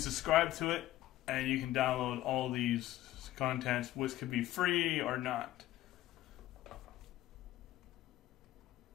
to it, and you can download all these contents, which could be free or not.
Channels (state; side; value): quieter; right; 14.9 dB